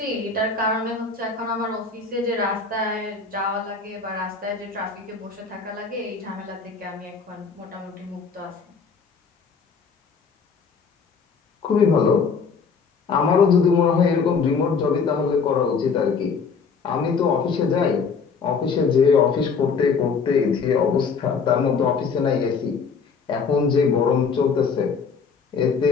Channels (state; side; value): quieter; right; 5.4 dB